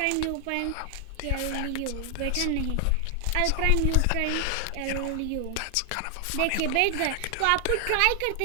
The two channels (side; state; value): both; different; correlation 0.00